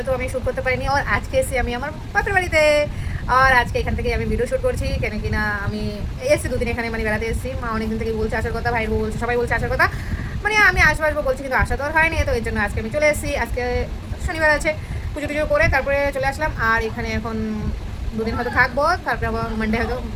তো আমি শ্যুট করতে পারিনি। আর আজকে এসে আমি আমার বাপের বাড়িতে, আর আজকে এখান থেকে আমি ভিডিও শ্যুট করছি। কেন কিনা আমি এসেছি দুদিন এখানে, মানে বেড়াতে এসেছি। মা অনেকদিন থেকে বলছে আসার কথা, ভাইয়ের বউ বলছে, সবাই বলছে আসার কথা। মানে আমি আসবো বলছি, কিন্তু আসা তো আর হয়নি। তো এর জন্য আজকে আমি চলে এসেছি। আজকে শনিবার আছে, পুজো টুজো করে তারপরে চলে আসলাম। আর এখানে এখন দুদিন হয়তো থাকবো, তারপরে আবার মানডে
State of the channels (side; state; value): both; identical; correlation 1.00